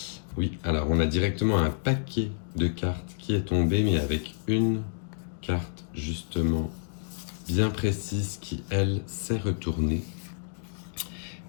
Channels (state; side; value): silent; right; digital silence